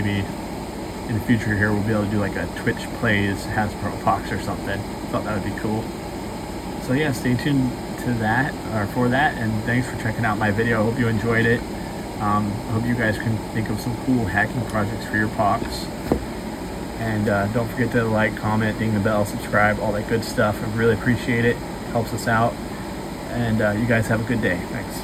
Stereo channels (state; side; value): identical; both; correlation 1.00